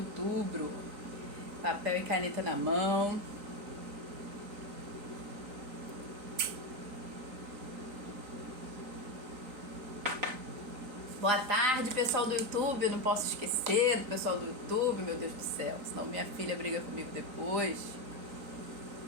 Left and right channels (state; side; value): late; left; 3.9 ms